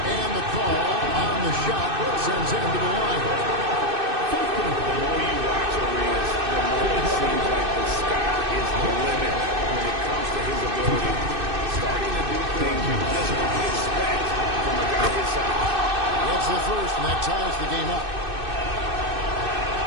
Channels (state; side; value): late; left; 2.6 ms